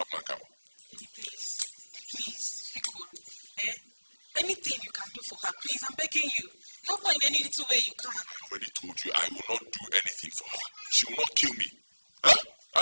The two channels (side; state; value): both; inverted; correlation -1.00